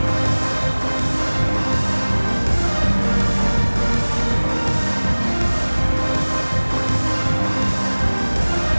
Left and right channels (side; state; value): both; inverted; correlation -1.00